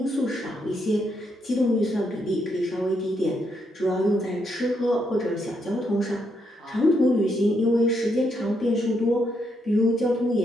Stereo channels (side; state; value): both; normal; correlation 0.78